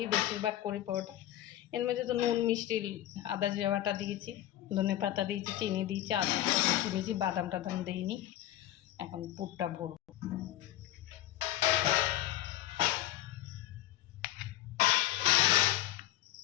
বেশিরভাগ করি পরোটা। এর মধ্যে তো নুন মিষ্টি আদা জিরা বাটা দিয়েছি, ধনে পাতা দিয়েছি, চিনি দিয়েছি, আদা দিয়েছি, বাদাম টাদাম দিইনি। এখন পুরটা ভরবো।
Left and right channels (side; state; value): right; quieter; 13.9 dB